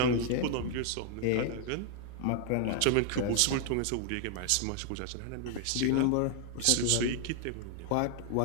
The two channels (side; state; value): both; different; correlation 0.00